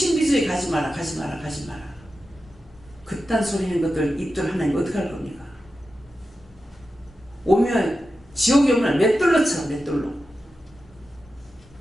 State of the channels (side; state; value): both; normal; correlation 0.91